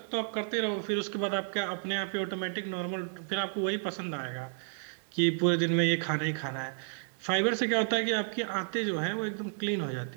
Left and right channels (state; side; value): silent; left; 57 dB below the other